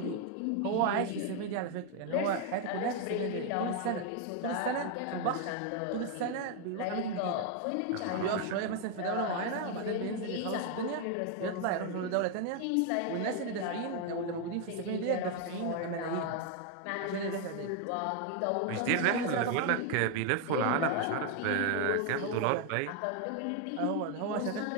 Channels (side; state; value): both; different; correlation 0.01